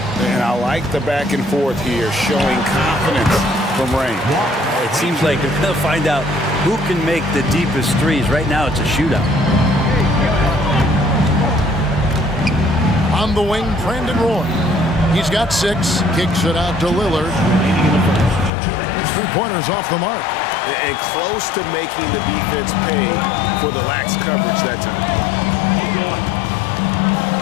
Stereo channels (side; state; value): right; drops out; at 18.5 s